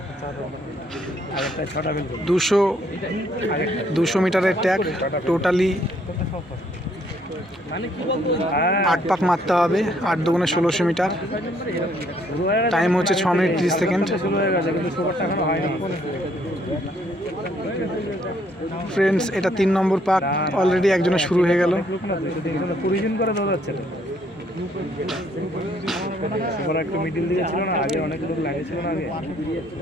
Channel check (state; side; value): normal; both; correlation 0.67